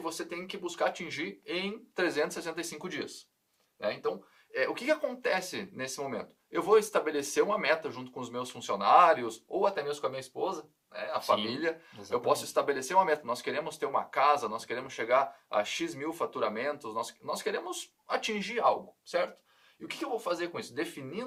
tem que buscar atingir em 365 dias. Né? Então, o que acontece nesse momento? Eu vou estabelecer uma meta junto com os meus funcionários, ou até mesmo com a minha esposa, né? A família. Exatamente. Eu posso estabelecer uma meta. Nós queremos ter uma casa, nós queremos chegar a X mil faturamentos, nós queremos atingir algo, certo? E o que eu vou fazer com isso?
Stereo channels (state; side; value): identical; both; correlation 1.00